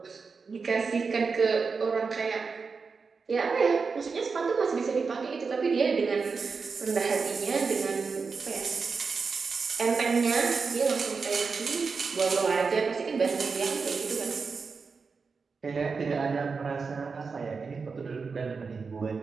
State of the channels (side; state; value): left; quieter; 4.9 dB